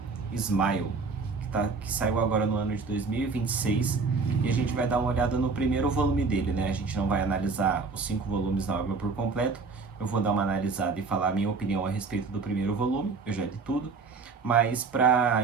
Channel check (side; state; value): left; quieter; 4.5 dB